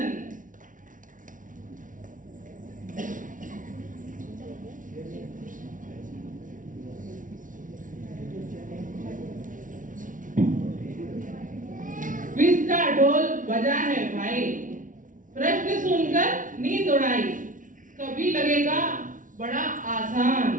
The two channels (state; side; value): late; left; 0.38 ms